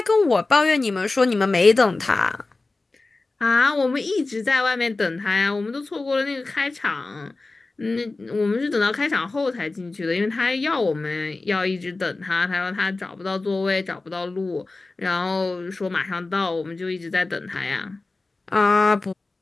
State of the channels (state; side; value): quieter; right; 3.4 dB